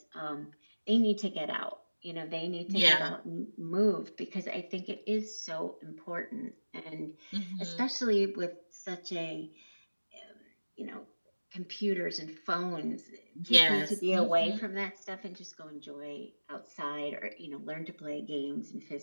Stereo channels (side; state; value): both; inverted; correlation -1.00